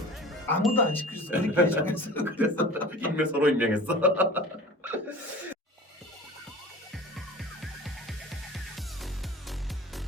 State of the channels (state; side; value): normal; both; correlation 0.39